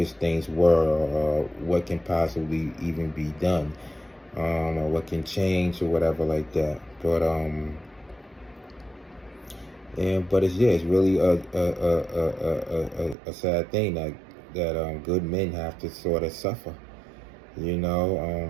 things were, or what can possibly even be done, or what can change or whatever like that. But it's really a sad thing that good men have to sort of suffer,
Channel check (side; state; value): left; drops out; at 13.2 s